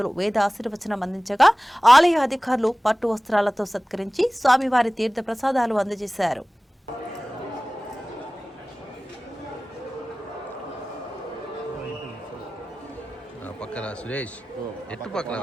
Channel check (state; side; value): normal; both; correlation 0.98